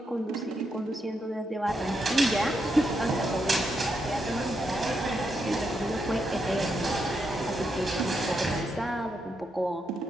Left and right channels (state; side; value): normal; both; correlation 0.82